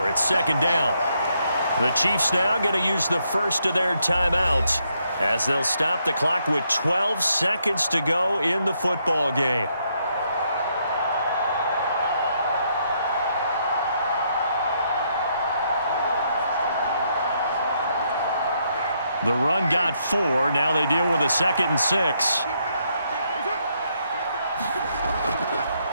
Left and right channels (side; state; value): both; inverted; correlation -0.75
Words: It's 2nd down. The Chiefs now going to use the first of their timeouts as they'll stop the clock with 12 seconds to go in the football game. The run got 4. Now they deal with a 2nd and 6.